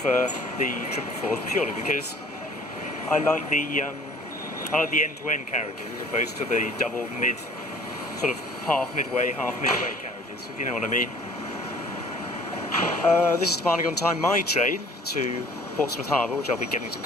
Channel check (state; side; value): normal; both; correlation 0.52